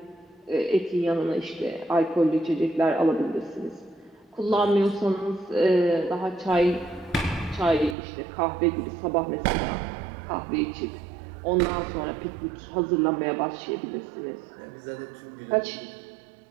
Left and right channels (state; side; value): drops out; left; at 8.0 s